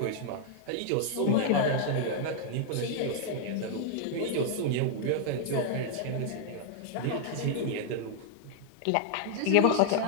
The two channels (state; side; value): different; both; correlation -0.01